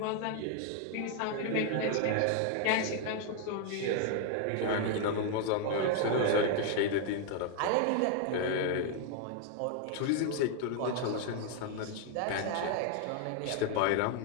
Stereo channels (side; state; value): both; different; correlation 0.00